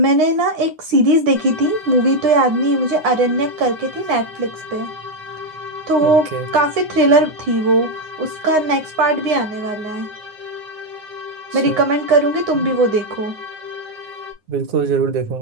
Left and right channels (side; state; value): left; late; 9.6 ms